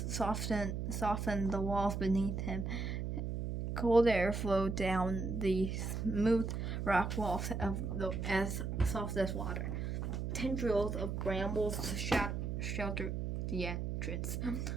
softened the walls beneath him. Cold air flowed down the smooth rock walls as soft as water. Tendrils of brambles sheltered the entrance.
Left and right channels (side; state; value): right; noise; hum, 3 dB below the sound